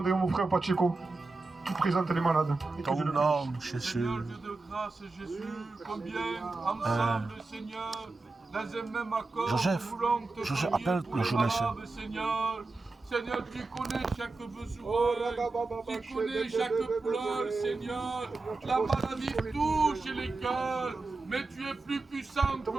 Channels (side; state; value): left; quieter; 3.5 dB